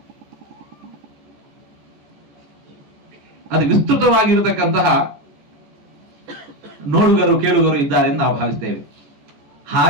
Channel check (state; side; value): late; left; 14 ms